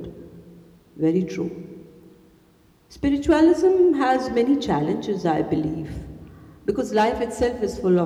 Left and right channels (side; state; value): both; identical; correlation 1.00